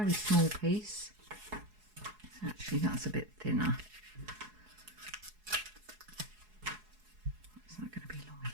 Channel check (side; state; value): left; late; 4.7 ms